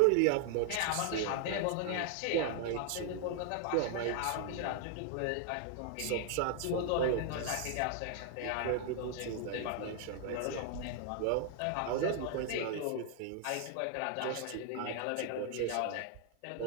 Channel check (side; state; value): both; different; correlation 0.00